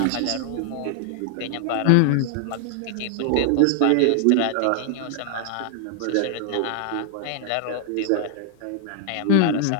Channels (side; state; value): both; different; correlation 0.00